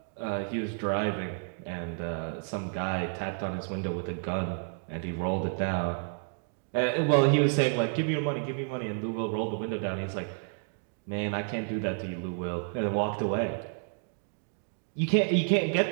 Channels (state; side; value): silent; left; 57 dB below the other